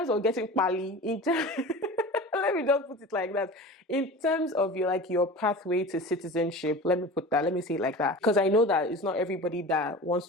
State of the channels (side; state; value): both; normal; correlation 0.35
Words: of getting pali, let me just put it like that. In terms of your pathway to citizenship, let me say it like that. Because I know that it's not everybody that wants